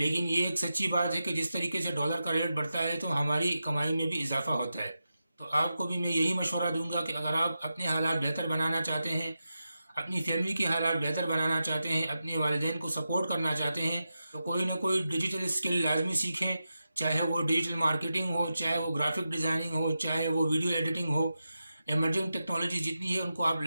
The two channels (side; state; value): both; inverted; correlation -0.90